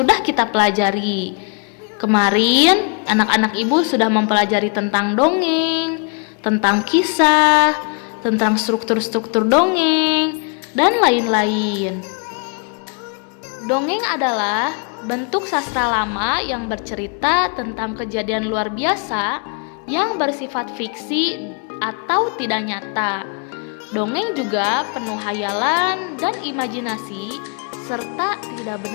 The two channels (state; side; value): quieter; right; 37.4 dB